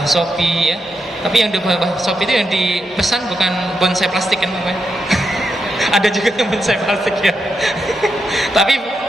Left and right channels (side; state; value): both; normal; correlation 0.84